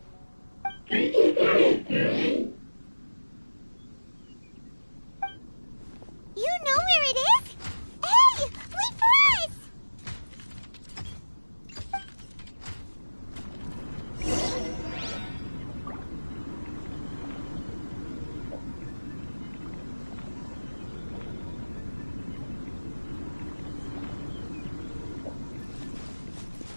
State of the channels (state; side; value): inverted; both; correlation -1.00